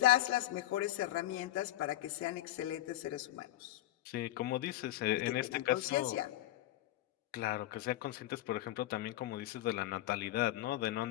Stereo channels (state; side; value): quieter; right; 15.1 dB